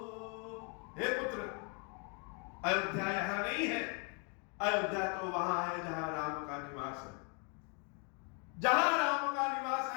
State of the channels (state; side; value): quieter; right; 37.2 dB